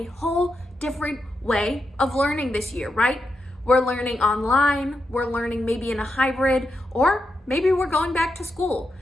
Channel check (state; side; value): normal; both; correlation 0.85